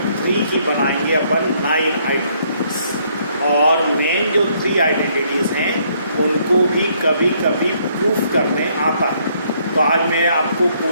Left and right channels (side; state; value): both; inverted; correlation -0.68